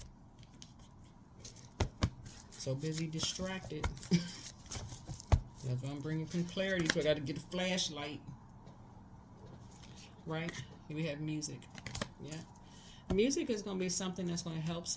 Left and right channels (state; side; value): identical; both; correlation 1.00